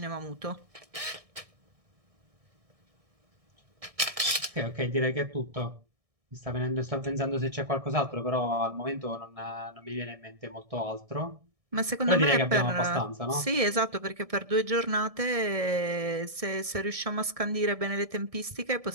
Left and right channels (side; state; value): left; late; 1.6 ms